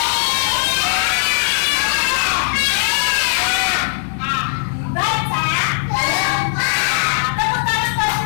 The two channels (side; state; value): right; silent; 58 dB below the other